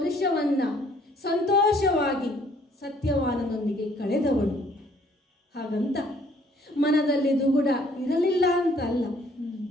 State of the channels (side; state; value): both; normal; correlation 0.62